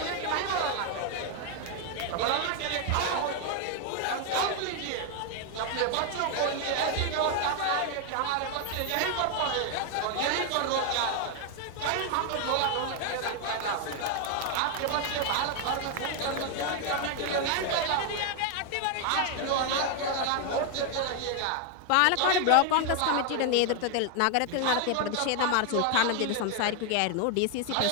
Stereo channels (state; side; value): different; both; correlation 0.01